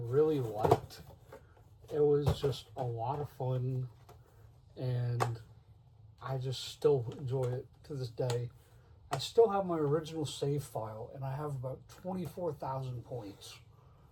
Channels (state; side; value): identical; both; correlation 1.00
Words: liked. It was just a lot of fun, and I just still enjoy it to this day. I still have my original save file, and I have about 24,000 points.